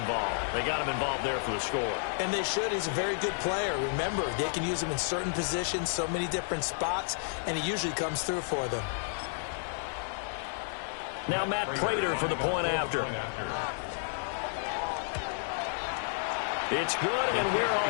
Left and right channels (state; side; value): silent; right; digital silence